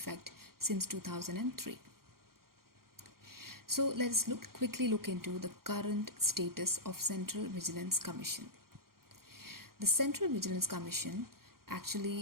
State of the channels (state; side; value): late; left; 0.92 ms